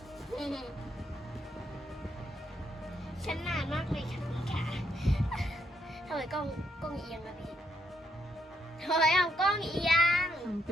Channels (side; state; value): both; normal; correlation 0.76